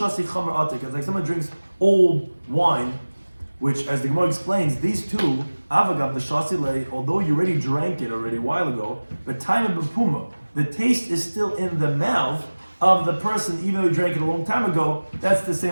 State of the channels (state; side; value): inverted; both; correlation -1.00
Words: chamer atik. It's like someone drinks old wine, which, as the Gemara explains, these two, avagav the shasi, although you already drank it already a while ago, but time of bepuma, the taste is still in the mouth of the person, even though you drank it a long time ago. That's the